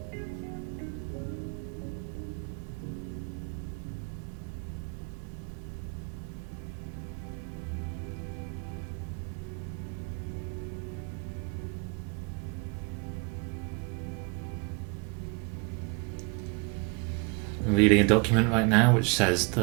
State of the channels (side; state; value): left; quieter; 31.2 dB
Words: reading a document right now which says